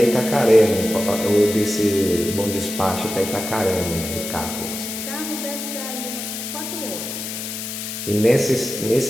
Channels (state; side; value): noise; left; hiss, 6 dB below the sound